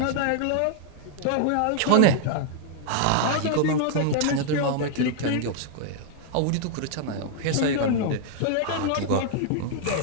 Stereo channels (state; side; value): different; both; correlation 0.00